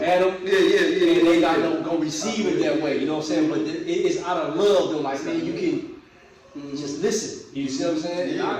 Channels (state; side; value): identical; both; correlation 1.00